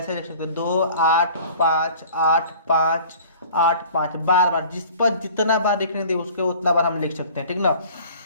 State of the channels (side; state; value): both; inverted; correlation -0.47